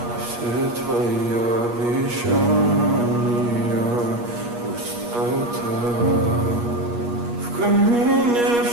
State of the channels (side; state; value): left; late; 8.4 ms